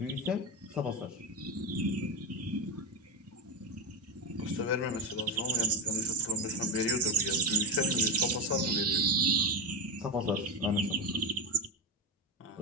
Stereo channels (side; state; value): both; normal; correlation 0.12